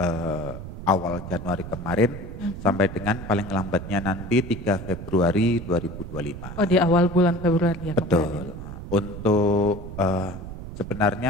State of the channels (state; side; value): noise; right; rumble, 10 dB below the sound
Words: awal Januari kemarin sampai dengan paling lambatnya nanti 3 Februari 2025. Oh, di awal bulan Februari ya. Betul. Untuk